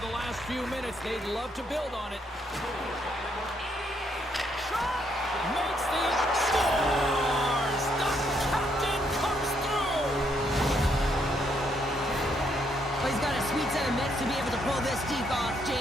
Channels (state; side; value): normal; both; correlation 0.74